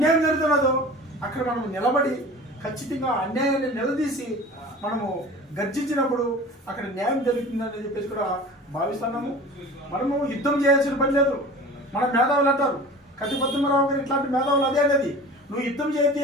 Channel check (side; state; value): both; normal; correlation 0.39